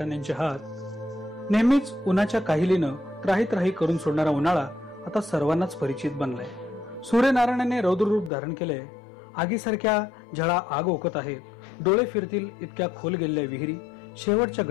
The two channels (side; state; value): right; drops out; at 8.3 s